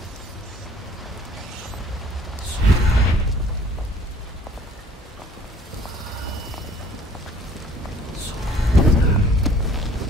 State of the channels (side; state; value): both; normal; correlation 0.54